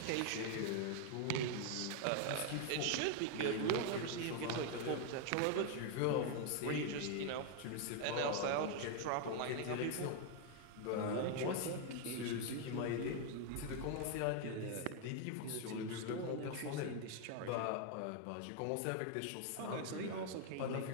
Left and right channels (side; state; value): both; different; correlation 0.00